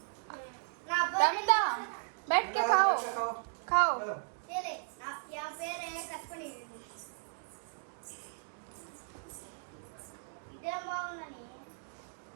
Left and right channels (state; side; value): silent; left; 54 dB below the other